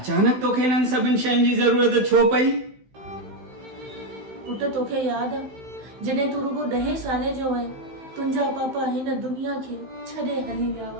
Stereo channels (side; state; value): left; late; 16 ms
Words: तोखे हिननि सभिनि शयुनि जी ज़रूरत छो पई? पुट तोखे यादि आहे जॾहिं तूं रुगो 10 साले जो आहे, तुंहिंजा पापा हिन दुनिया खे छॾे हली विया